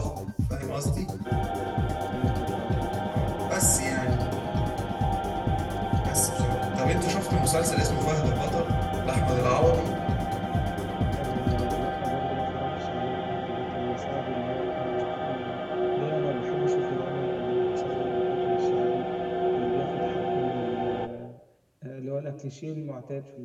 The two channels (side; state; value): both; identical; correlation 1.00